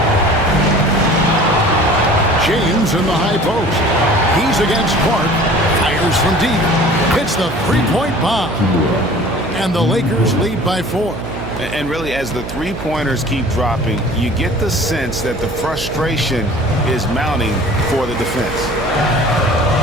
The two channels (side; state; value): right; noise; hum, 9 dB below the sound